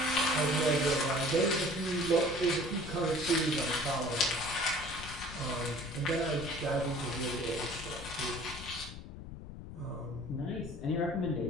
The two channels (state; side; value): noise; left; rumble, 12 dB below the sound